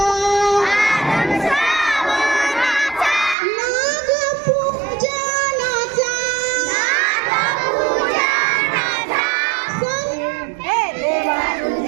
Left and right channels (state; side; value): drops out; left; at 3.4 s